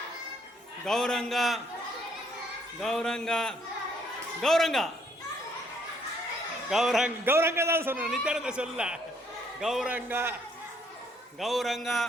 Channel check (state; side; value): normal; both; correlation 0.67